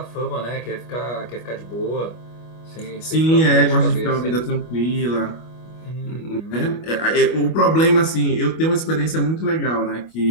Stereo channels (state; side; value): late; right; 25 ms